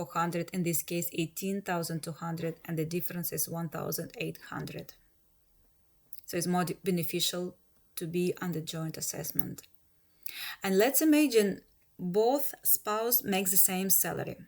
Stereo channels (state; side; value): identical; both; correlation 1.00